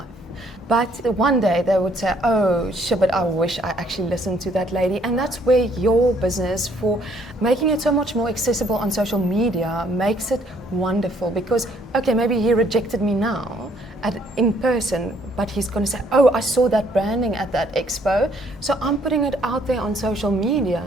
But one day they would say, oh, shit, but I wish I actually listened to that lady. And that's where your business, for making it so much more accessible on social media, makes it wonderful. Because, okay, maybe he rejected me now in person, but he's going to say, oh, I saw that branding at that expo, so I'm putting it out there on social media.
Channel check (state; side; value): normal; both; correlation 0.65